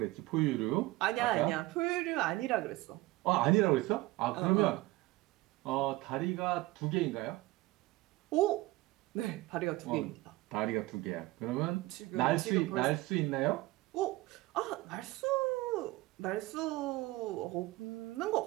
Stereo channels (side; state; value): left; quieter; 19.6 dB